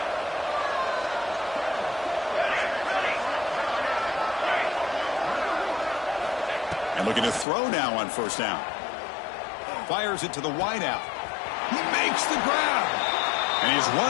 And looking to throw now on 1st down. Fires it to the wideout. He makes the grab. And he's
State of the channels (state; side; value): drops out; right; at 7.5 s